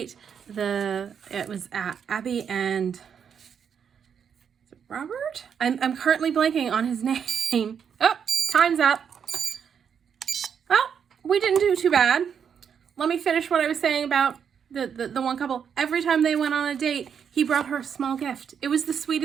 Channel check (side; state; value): left; quieter; 7.5 dB